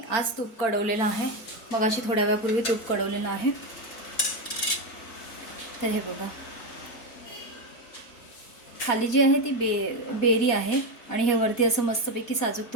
आज तूप कढवलेलं आहे। मग अशी थोड्या वेळापूर्वी तूप कढवलेलं आहे। तर हे बघा, खाली जी आहे ती बेरी आहे आणि हे वरती असं मस्तपैकी साजूक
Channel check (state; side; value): late; right; 4.5 ms